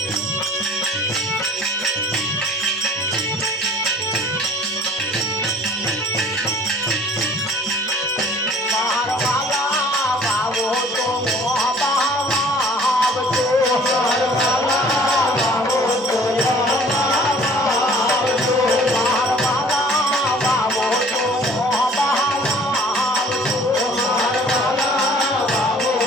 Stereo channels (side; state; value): both; normal; correlation 0.52